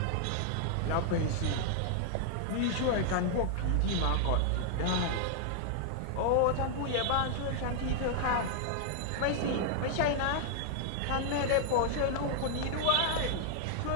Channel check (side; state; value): both; different; correlation 0.00